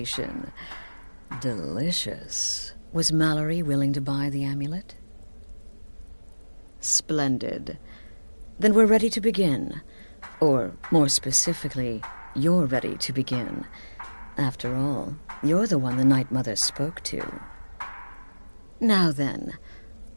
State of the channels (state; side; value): inverted; both; correlation -1.00